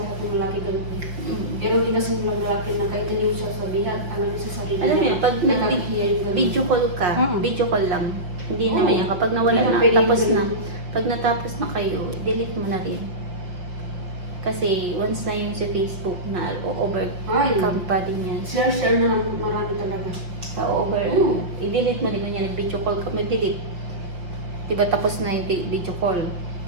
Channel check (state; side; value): late; left; 5.8 ms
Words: ng lalaki ganun. Mm. Pero hindi kasi ng lalaki na kahit hindi mo siya sabihan, alam niya sa sarili Alam niya, mo, pag nakakahiya yung ganun. video call ka, Mm. video call lang. Hindi Oo. naman yan. Kapag nawala Hindi na, na pwede tapos yung na. ganun. Pag natapos na kayo, delete mo na rin. Kasi once na yun sa Facebook na overcome pa din yan. Share na ng marami talaga. Sa Oo. i-delete mo din kung yan, nag-video call ka, delete. Diba tapos na yung video call?